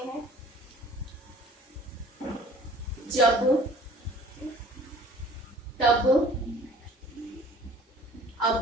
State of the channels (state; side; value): normal; both; correlation 0.51